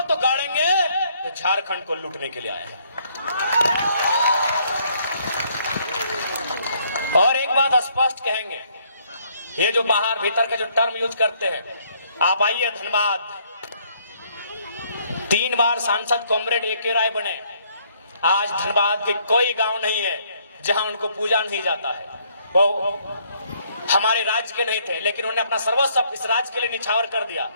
तो गाड़ेंगे तो झारखंड को लूटने के लिए आए हैं। और एक बात स्पष्ट कहेंगे, ये जो बाहर भीतर के जो टर्म यूज करते हैं, आप आइए धनबाद, 3 बार सांसद कॉमरेड ए के राय बने। आज धनबाद के कोई गांव नहीं है जहां उनको पूजा नहीं जाता है। वो हमारे राज्य के नहीं थे, लेकिन उन्होंने अपना सर्वस्व इस राज्य के लिए निछावर कर दिया।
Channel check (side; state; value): both; inverted; correlation -0.67